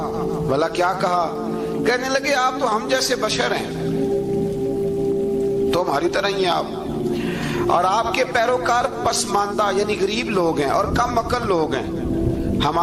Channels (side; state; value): both; identical; correlation 1.00